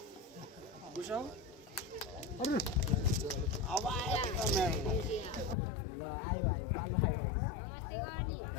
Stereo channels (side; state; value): right; drops out; at 5.6 s